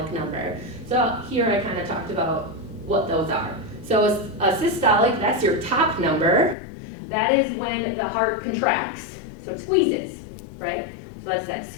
number. So here I kind of talked about what those are. So a systolic, that's your top number. That is when the heart contracts, so it squeezes, right? So that's that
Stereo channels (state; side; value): drops out; right; at 6.6 s